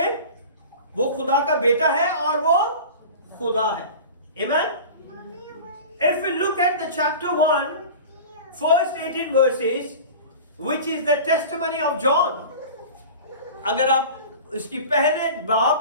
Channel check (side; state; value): both; inverted; correlation -0.36